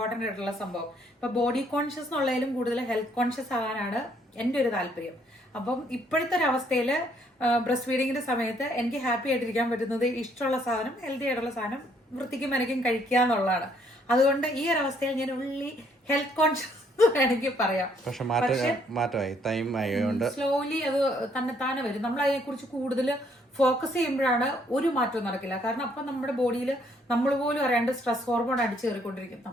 ആയിട്ടുള്ള സംഭവം. ഇപ്പൊ ബോഡി കോൺഷ്യസ് എന്നുള്ളതിലും കൂടുതൽ ഹെൽത്ത് കോൺഷ്യസ് ആകാനാണ് എൻ്റെ ഒരു താല്പര്യം. അപ്പം ഇപ്പോഴത്തെ ഒരു അവസ്ഥയിൽ ബ്രസ്റ്റ് ഫീഡിങ്ങിന്റെ സമയത്ത് എനിക്ക് ഹാപ്പി ആയിട്ടിരിക്കാൻ പറ്റുന്നത് ഇഷ്ടമുള്ള സാധനം, ഹെൽത്തി ആയിട്ടുള്ള സാധനം വൃത്തിക്കും മെനക്കും കഴിക്കുക എന്നുള്ളതാണ്. അതുകൊണ്ട് ഈ ഒരു അവസ്ഥയിൽ ഞാൻ ഉള്ളി ഹെൽത്ത് കോൺഷ്യസ് വേണമെങ്കിൽ പറയാം. പക്ഷെ മാറ്റമായി, ടൈം ആയതുകൊണ്ട് സ്ലോലി അത് തന്നെ വരും. നമ്മൾ അതിനെ കുറിച്ച് കൂടുതൽ ഫോക്കസ് ചെയ്യുമ്പോഴാണ് ഒരു മാറ്റവും നടക്കില്ല. കാരണം അപ്പം നമ്മുടെ ബോഡിയിൽ നമ്മൾ പോലും അറിയാണ്ട് സ്ട്രെസ് ഹോർമോൺ അടിച്ചു കയറിക്കൊണ്ടിരിക്കും.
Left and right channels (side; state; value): both; normal; correlation 0.67